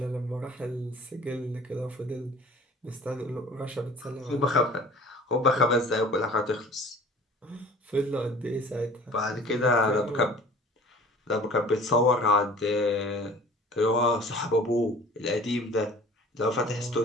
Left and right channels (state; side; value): normal; both; correlation 0.46